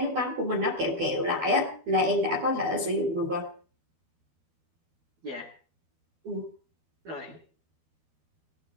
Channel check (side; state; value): left; late; 12 ms